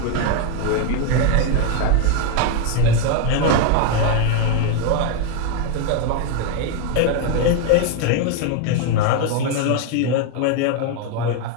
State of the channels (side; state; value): both; different; correlation 0.01